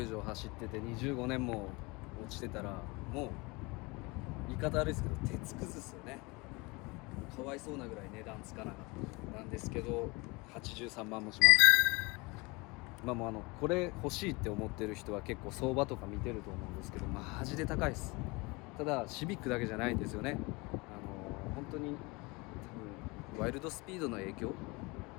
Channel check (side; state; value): right; quieter; 25.7 dB